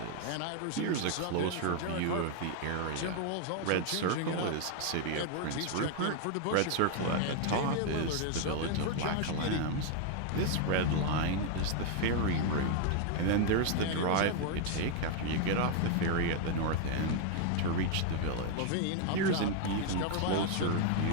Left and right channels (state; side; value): different; both; correlation 0.00